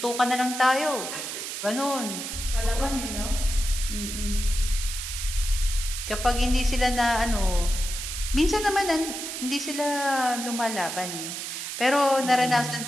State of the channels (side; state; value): right; noise; hiss, 6 dB below the sound